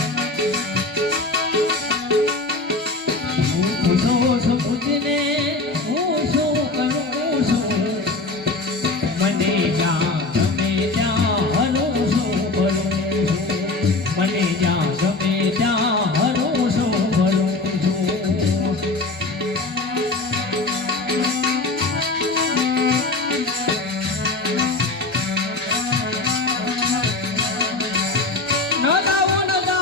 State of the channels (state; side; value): quieter; right; 3.3 dB